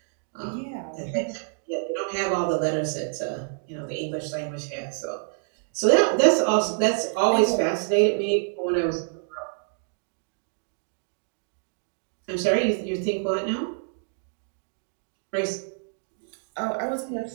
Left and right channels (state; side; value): silent; left; digital silence